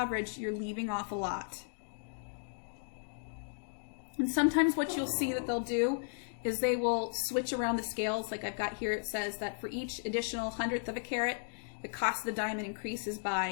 you're leaving off a lot. And sometimes what you'll see that they'll do is they will switch around the scales. Like I've got here, it says that for each additional hundredth of a carat, the cost of the diamond increases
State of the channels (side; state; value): right; silent; digital silence